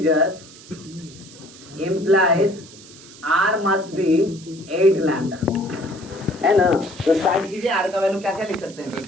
implies r must be 8 lambda, है ना। तो स्टार्ट कीजिए, r का वैल्यू क्या क्या लिख सकते हैं,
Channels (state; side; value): noise; right; hiss, 20 dB below the sound